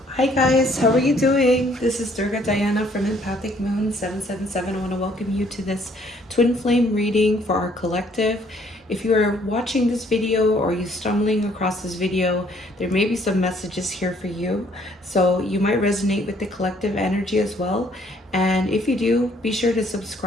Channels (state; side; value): normal; both; correlation 0.64